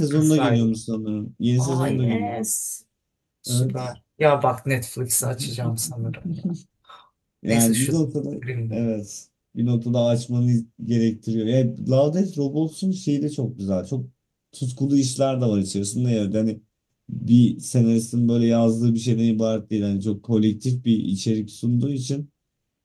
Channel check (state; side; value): identical; both; correlation 1.00